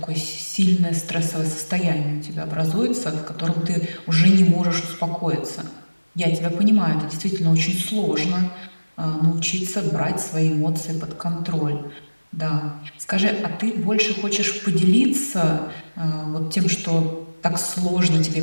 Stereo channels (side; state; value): both; inverted; correlation -1.00